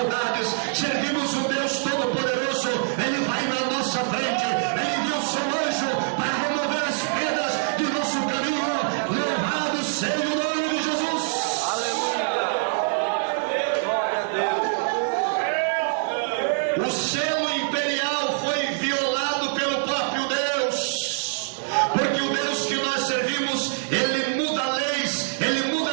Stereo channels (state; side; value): silent; left; 59 dB below the other